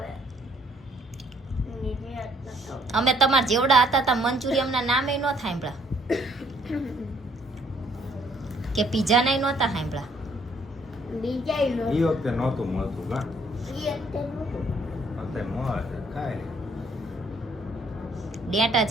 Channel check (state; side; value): normal; both; correlation 0.64